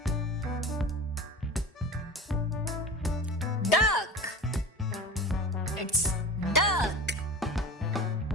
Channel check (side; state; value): both; normal; correlation 0.34